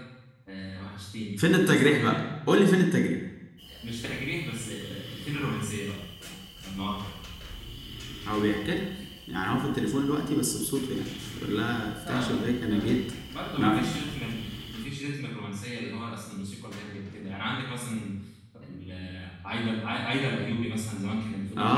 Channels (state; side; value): identical; both; correlation 1.00